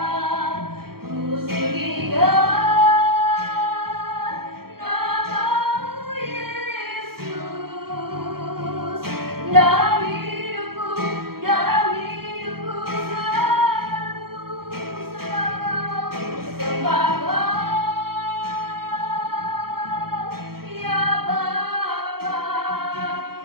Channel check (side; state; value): left; late; 0.94 ms